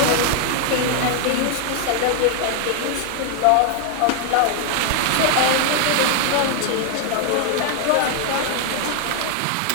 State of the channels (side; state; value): both; different; correlation 0.00